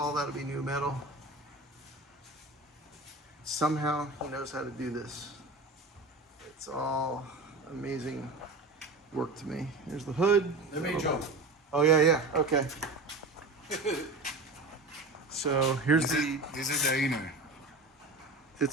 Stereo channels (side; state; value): left; quieter; 3.1 dB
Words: that'll be new metal. Somehow he knows how to do this. It's all amazing work to me. Here's the hood. Let me jump. Oh yeah, okay. So here's this is the inner.